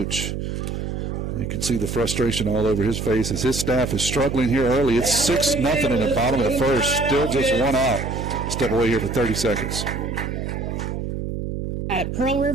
You can see the frustration all over his face as his staff is struggling here early. It's 6-0 in the bottom of the first. Still just one out. Step away here for 30 seconds. At Pearl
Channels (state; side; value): noise; right; hum, 4 dB below the sound